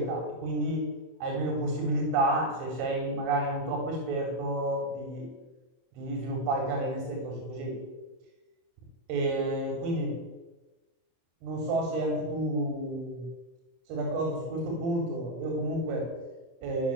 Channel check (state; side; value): late; left; 23 ms